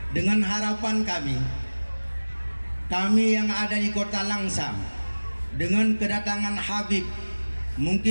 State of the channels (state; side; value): inverted; both; correlation -1.00